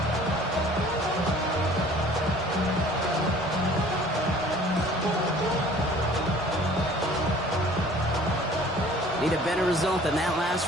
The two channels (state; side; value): normal; both; correlation 0.51